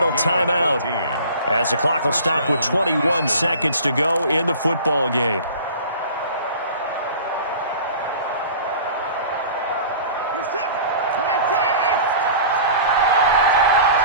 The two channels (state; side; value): inverted; both; correlation -0.42